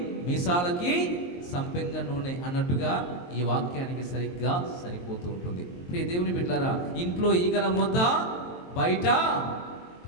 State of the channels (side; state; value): right; late; 23 ms